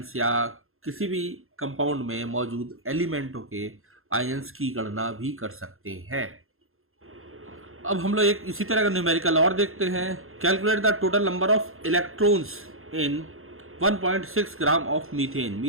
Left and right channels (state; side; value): late; left; 0.61 ms